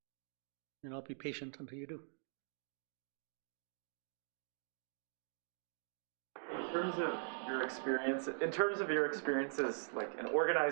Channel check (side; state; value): left; silent; digital silence